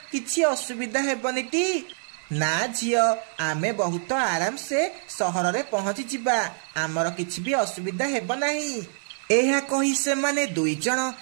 किछि असुविधा हेबनी टी? ना झियो, आमे बहुत आराम से सहर रे पहुंची जिबा, आमर किछि भी असुविधा हेब नाही। एहा कही से माने दुई जन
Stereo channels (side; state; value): left; silent; digital silence